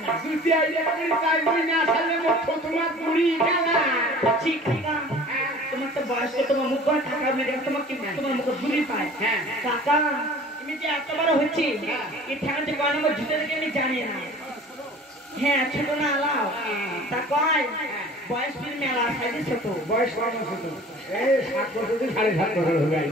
জুতি আইলে করি তাই বই না আসলে মুখ তোমার পুরি গেলা ঠিক কাকা তোমার তো বয়স তো তোমার মুখ করে টাকা মেরে তোমার কি তোমার মুখে ভুলি পায় হ্যাঁ কাকা তুমি যে এত বড় হচ্ছি এই ঠ্যাংতে কয় নম্বর জুতে থেকে আমি জানি না হ্যাঁ ছোট না আলাও তা কয় বয়স ফির মেলা সাইডে ছোট বয়স কত ছোট এই 7 বছর থেকে 7.5 বছর হবে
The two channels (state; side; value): normal; both; correlation 0.45